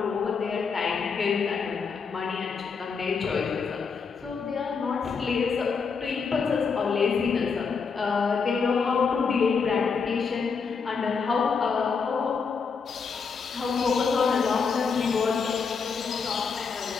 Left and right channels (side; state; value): right; quieter; 5.5 dB